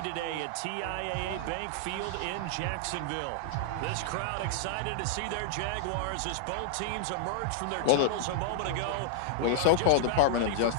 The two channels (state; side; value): different; both; correlation -0.01